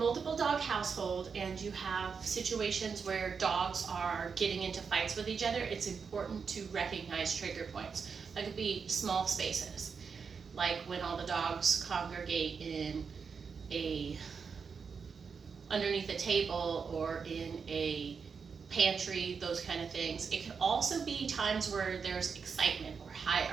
dog household and you have situations where dogs are getting into fights with each other, it's important to recognize trigger points. That could be small spaces, like when all the dogs congregate in underneath a table or in a pantry, those kind of things. It can also be times where there's excitement or high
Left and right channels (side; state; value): left; quieter; 5.8 dB